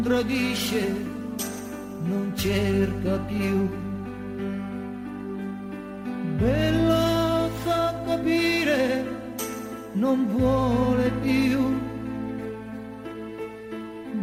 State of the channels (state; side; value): identical; both; correlation 1.00